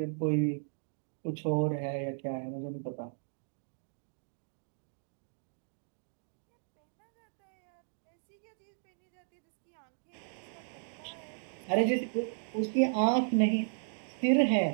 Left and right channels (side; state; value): left; silent; digital silence